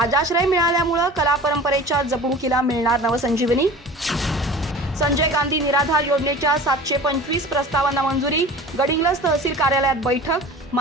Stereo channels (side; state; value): both; normal; correlation 0.39